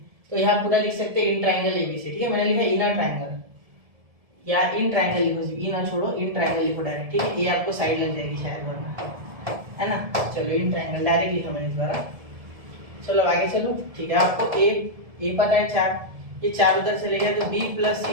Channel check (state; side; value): late; left; 1.7 ms